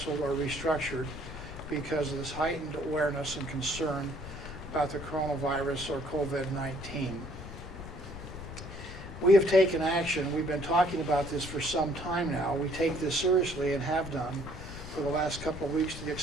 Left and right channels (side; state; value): left; noise; rumble, 11 dB below the sound